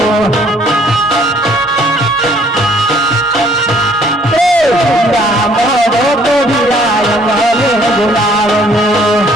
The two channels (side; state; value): both; normal; correlation 0.60